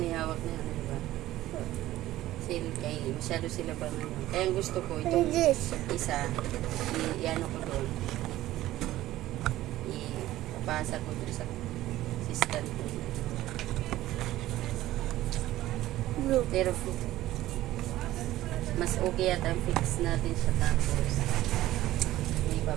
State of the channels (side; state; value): left; quieter; 15.2 dB